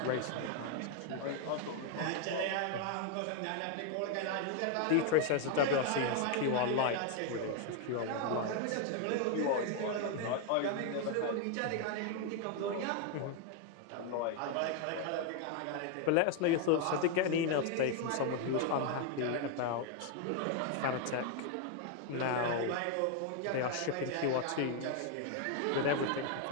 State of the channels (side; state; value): both; different; correlation 0.01